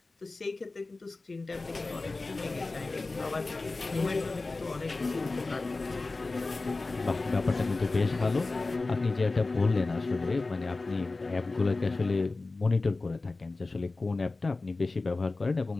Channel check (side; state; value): right; quieter; 3.4 dB